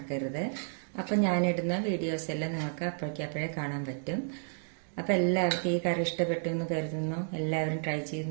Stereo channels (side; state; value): left; silent; digital silence